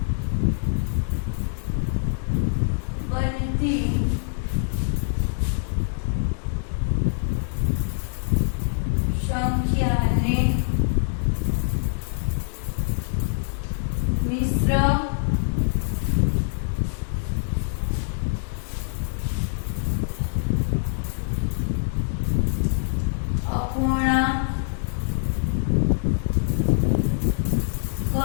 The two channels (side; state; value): right; silent; digital silence